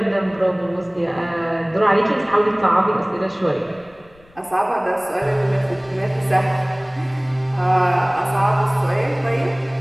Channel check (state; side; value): noise; left; rumble, 29 dB below the sound